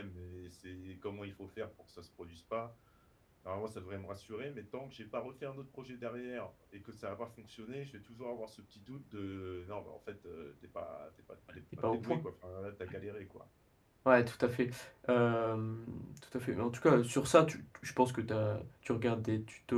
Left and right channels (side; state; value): both; identical; correlation 1.00